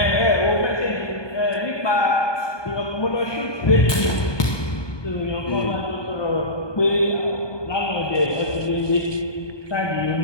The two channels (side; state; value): right; late; 1.2 ms